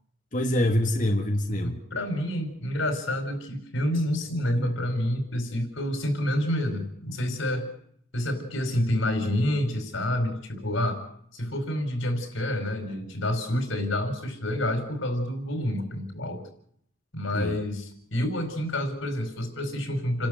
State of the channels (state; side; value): normal; both; correlation 0.69